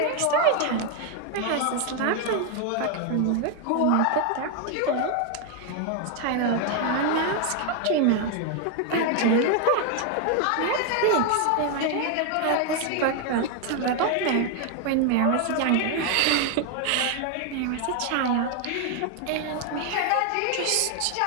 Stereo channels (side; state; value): both; different; correlation 0.00